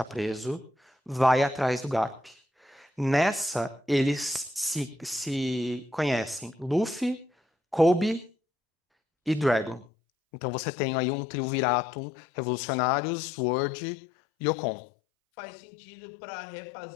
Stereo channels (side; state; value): right; drops out; at 9.9 s